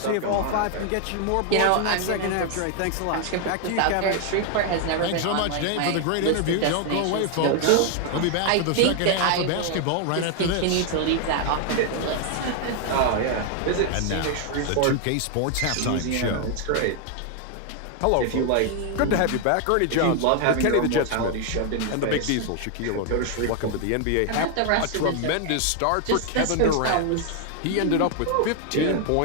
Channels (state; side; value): different; both; correlation 0.00